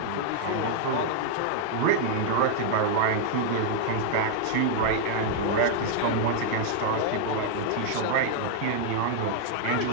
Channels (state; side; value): different; both; correlation -0.01